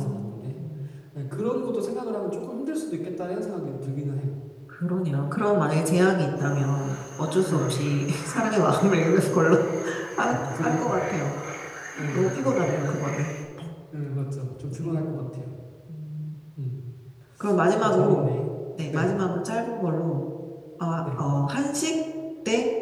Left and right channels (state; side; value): identical; both; correlation 1.00